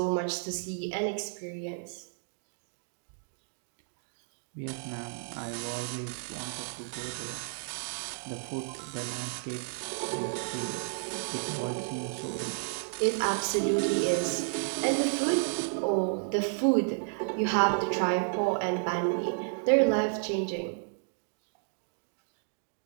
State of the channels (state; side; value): silent; left; digital silence